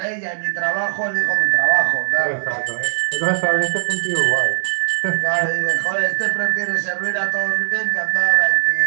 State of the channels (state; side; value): silent; left; digital silence